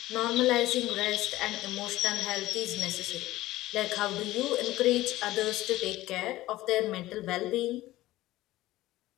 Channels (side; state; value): right; quieter; 16.7 dB